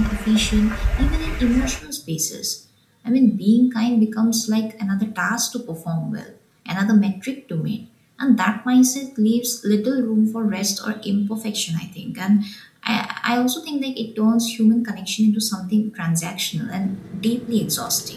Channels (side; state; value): both; identical; correlation 1.00